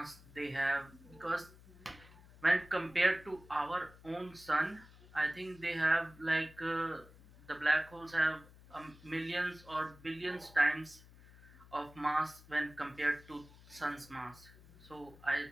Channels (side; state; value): left; noise; hum, 22 dB below the sound